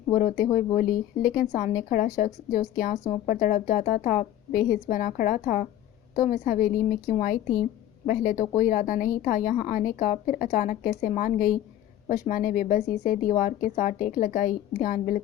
وہ روتے ہوئے بولی۔ لیکن سامنے کھڑا شخص جو اس کے آنسوؤں پر تڑپ جاتا تھا بے حس بنا کھڑا تھا۔ تم اس حویلی میں کیوں آئی تھی؟ پہلے تو کوئی ارادہ نہیں تھا یہاں آنے کا، پھر اچانک کیسے مان گئی؟ وشما نے بے بسی سے دیوار کے ساتھ ٹیک لگائی۔ دھیان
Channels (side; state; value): right; quieter; 12.3 dB